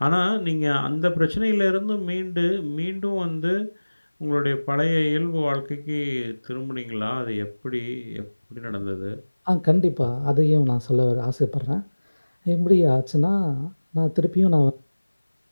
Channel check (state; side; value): inverted; both; correlation -1.00